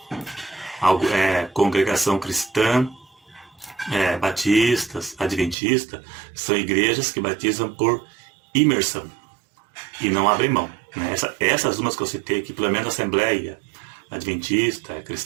Congregação Cristã, batistas, adventistas, são igrejas que batizam por imersão e não abrem mão, né? Essas umas que eu citei aqui, pelo menos a Assembleia Adventista,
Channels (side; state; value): left; drops out; at 5.6 s